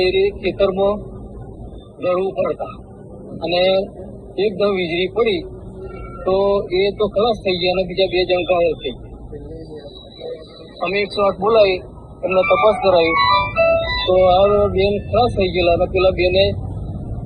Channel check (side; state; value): both; identical; correlation 1.00